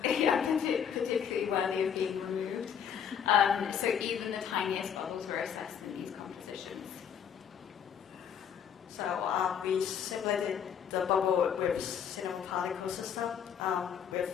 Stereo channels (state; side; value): quieter; right; 8.2 dB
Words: particularly worthy of being removed. So even the tiniest bubbles were assessed in these compositions. So we simulated the bubble with cinema particle system with